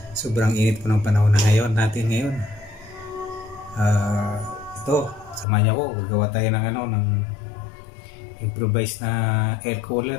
Sobrang init po ng panahon na ngayon natin ngayon. Ito, samahan niyo ako, gagawa tayo ng ng improvised na air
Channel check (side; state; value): right; drops out; at 5.5 s